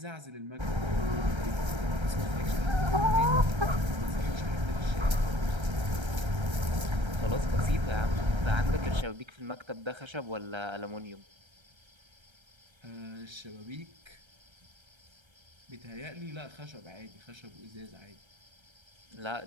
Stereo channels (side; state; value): left; late; 1.3 ms